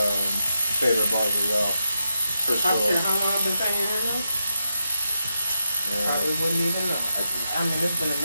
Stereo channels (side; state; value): both; inverted; correlation -0.86